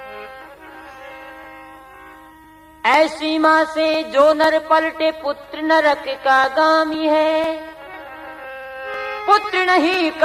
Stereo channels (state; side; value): identical; both; correlation 1.00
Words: ऐसी माँ से जो नर पलटे पुत्र नरक का गामी है। पुत्र नहीं